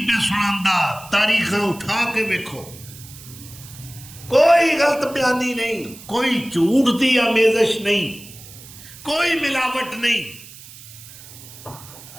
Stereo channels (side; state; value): right; noise; hiss, 18 dB below the sound